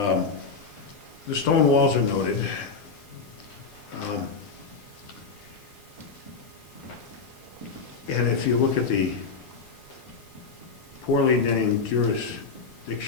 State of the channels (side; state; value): right; quieter; 4.8 dB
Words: The stone walls are noted. And if you look at the poorly named